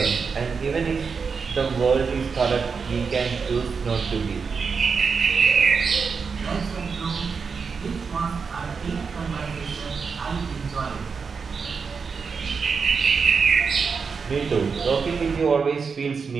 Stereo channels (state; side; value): quieter; left; 5.4 dB